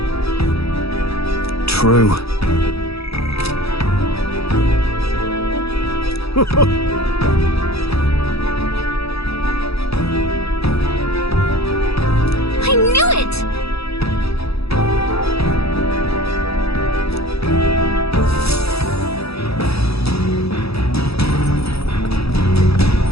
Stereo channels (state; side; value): late; right; 0.77 ms